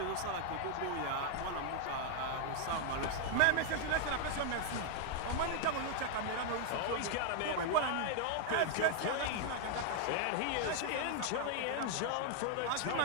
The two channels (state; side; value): different; both; correlation 0.00